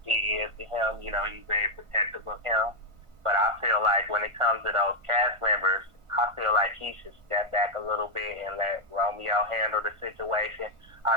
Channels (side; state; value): left; late; 1.4 ms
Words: P is to him. He's very protective of him. But I feel like when it comes to those cast members, I feel like he should step back a little bit and let Romeo handle the situation. I